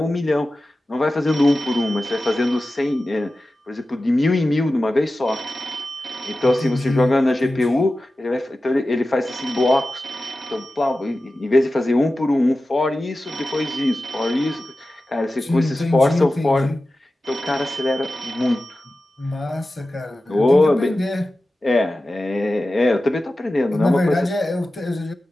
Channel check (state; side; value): normal; both; correlation 0.94